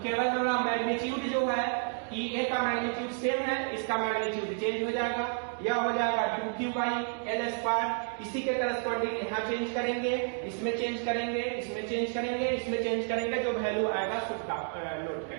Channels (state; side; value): silent; left; 57 dB below the other